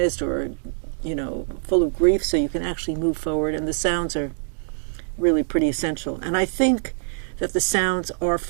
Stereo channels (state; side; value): silent; left; digital silence